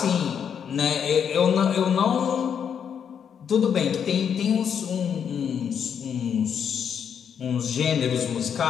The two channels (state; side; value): quieter; right; 7.8 dB